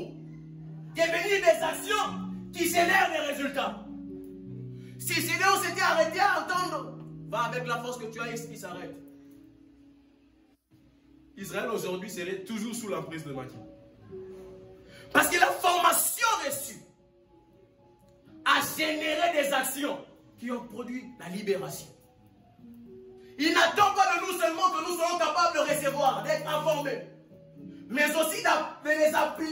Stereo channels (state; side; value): identical; both; correlation 1.00